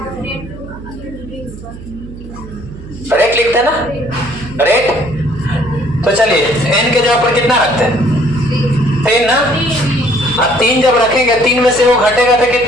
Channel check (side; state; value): right; noise; hum, 15 dB below the sound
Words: रेट लिखते हैं ना रेट। तो चलिए n के जगह पर कितना रखते हैं 3 ना, अब 3 जब रखेंगे 3 में से वो घटेगा तो